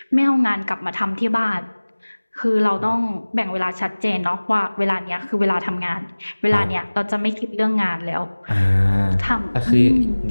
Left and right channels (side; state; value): both; inverted; correlation -1.00